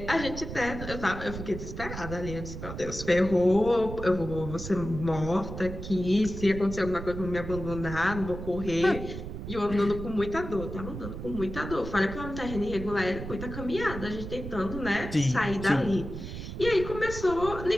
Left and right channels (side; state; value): right; noise; rumble, 8 dB below the sound